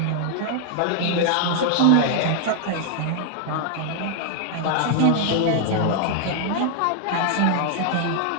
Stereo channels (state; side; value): different; both; correlation 0.00